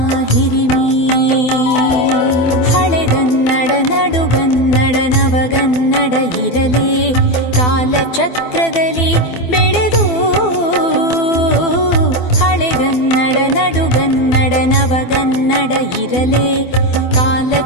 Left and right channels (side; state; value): right; late; 12 ms